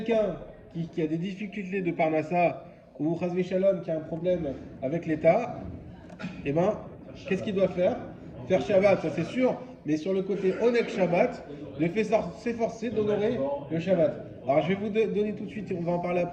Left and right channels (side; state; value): both; identical; correlation 1.00